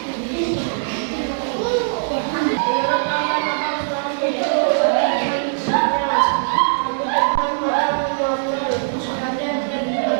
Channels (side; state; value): left; silent; digital silence